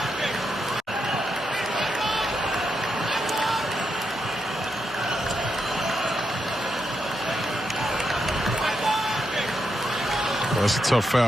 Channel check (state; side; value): normal; both; correlation 0.83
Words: That's a tough